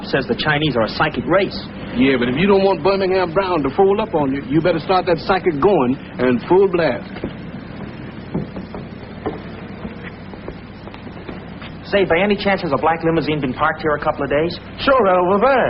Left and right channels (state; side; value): identical; both; correlation 1.00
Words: says the Chinese are a psychic race. Yeah, but if you don't want Birmingham Brown to fold up on you, you better start that psychic going and full blast. Say, by any chance has a black limousine been parked here a couple of days? Sure, over